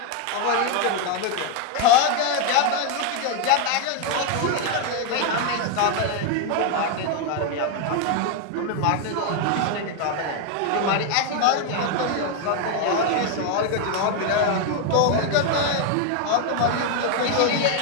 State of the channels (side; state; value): both; different; correlation 0.01